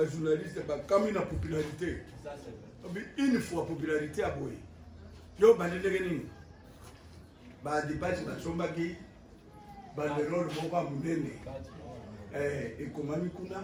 bakami na popularité une fois popularité à boye yo bandendeke nini badepasi basombaki banderole moko ya monene ekomami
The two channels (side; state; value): both; identical; correlation 1.00